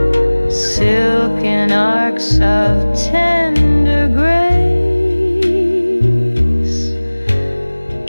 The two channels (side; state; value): both; inverted; correlation -1.00